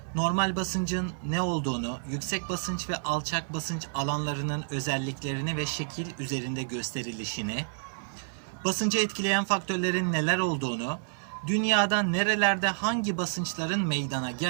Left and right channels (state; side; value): silent; left; digital silence